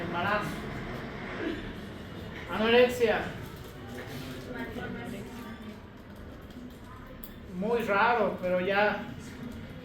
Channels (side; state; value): both; identical; correlation 1.00